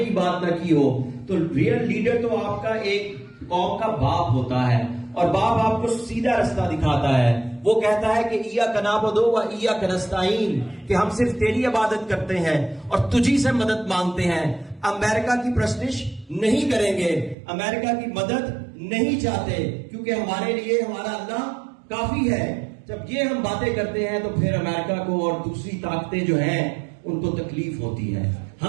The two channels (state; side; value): drops out; left; at 17.4 s